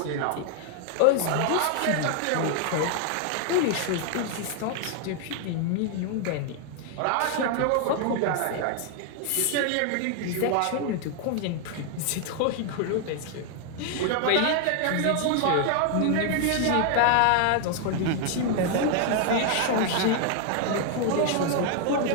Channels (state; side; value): different; both; correlation 0.00